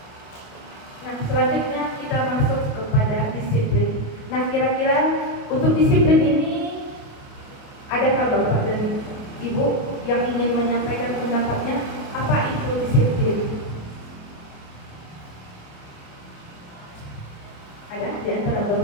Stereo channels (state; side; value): late; right; 28 ms